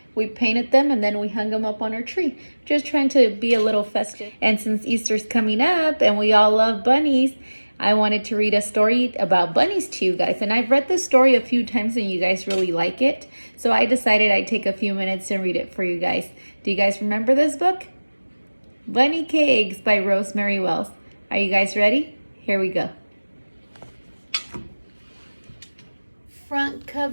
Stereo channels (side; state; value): both; inverted; correlation -1.00